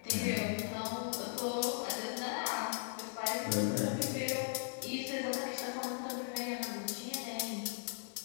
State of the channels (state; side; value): silent; right; 52 dB below the other